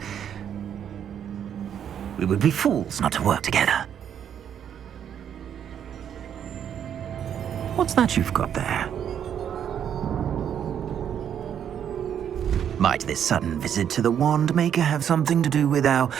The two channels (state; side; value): quieter; left; 9.0 dB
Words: We would be fools not to work together. What's that you've got there? Might this sudden visit to the Wand Maker have something to do with our